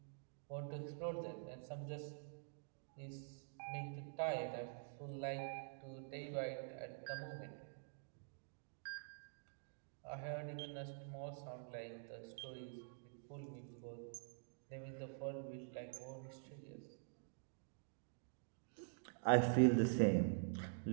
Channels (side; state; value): left; silent; digital silence